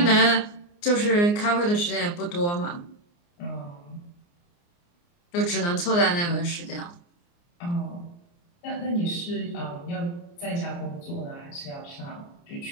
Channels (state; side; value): late; right; 29 ms